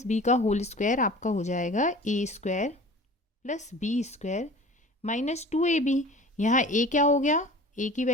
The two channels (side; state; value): both; normal; correlation 0.42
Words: बी का होल स्क्वायर आपका हो जाएगा A square plus B square minus 2ab। यहाँ ए क्या हो गया? ए की